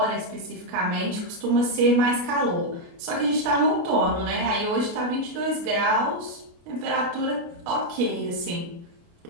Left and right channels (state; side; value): late; left; 29 ms